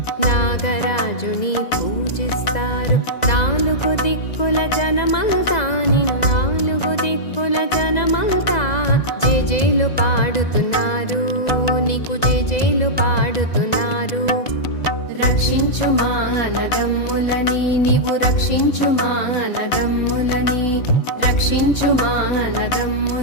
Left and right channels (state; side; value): late; right; 2.0 ms